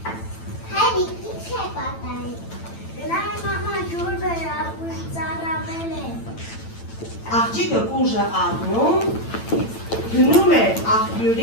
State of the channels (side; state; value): right; late; 8.9 ms